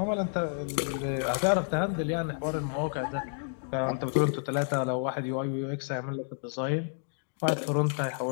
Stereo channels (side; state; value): right; silent; 58 dB below the other